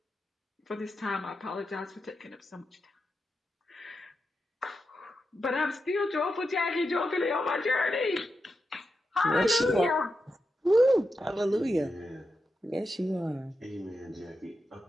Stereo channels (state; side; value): normal; both; correlation 0.88